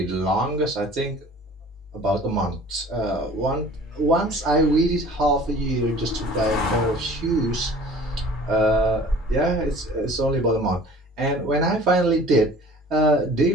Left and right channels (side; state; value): both; normal; correlation 0.47